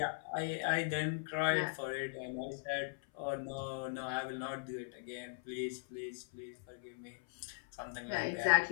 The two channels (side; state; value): right; silent; 52 dB below the other